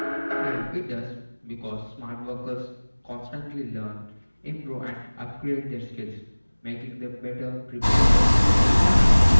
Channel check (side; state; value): both; inverted; correlation -1.00